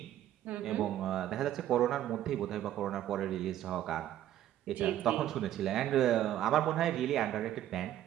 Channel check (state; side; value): quieter; left; 12.4 dB